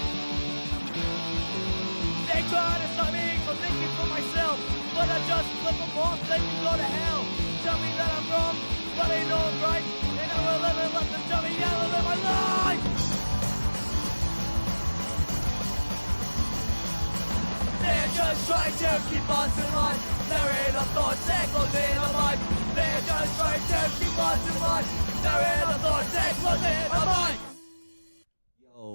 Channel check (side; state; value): both; inverted; correlation -1.00